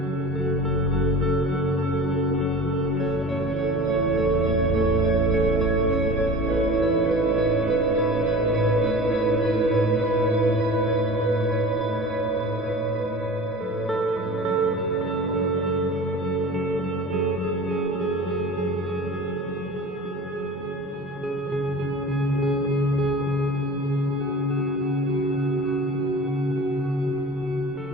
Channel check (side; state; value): both; normal; correlation 0.38